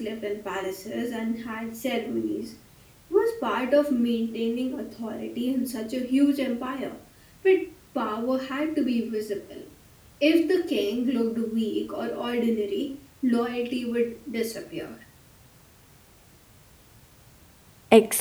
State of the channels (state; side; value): identical; both; correlation 1.00